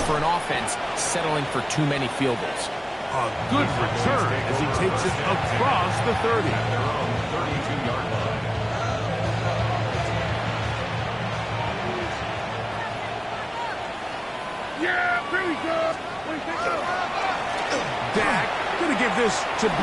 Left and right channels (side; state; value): both; identical; correlation 1.00